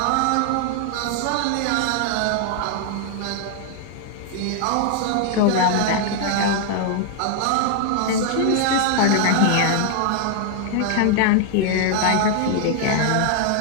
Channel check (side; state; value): both; different; correlation 0.00